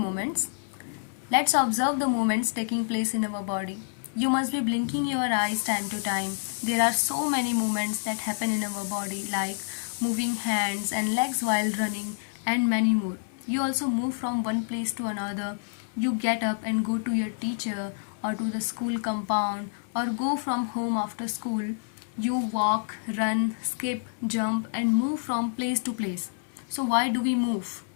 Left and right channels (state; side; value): silent; right; 59 dB below the other